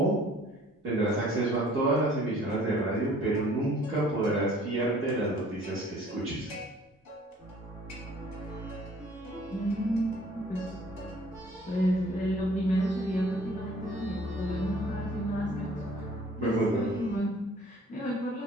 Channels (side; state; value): both; normal; correlation 0.55